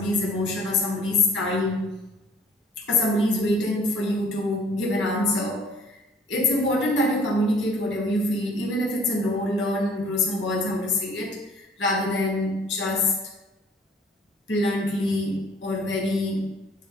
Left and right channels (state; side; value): normal; both; correlation 0.54